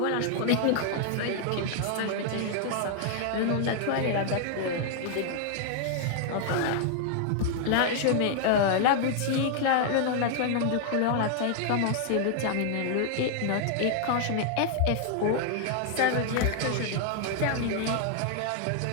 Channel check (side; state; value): both; different; correlation 0.00